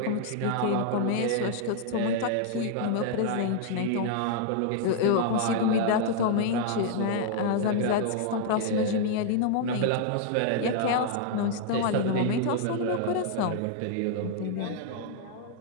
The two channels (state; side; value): different; both; correlation -0.01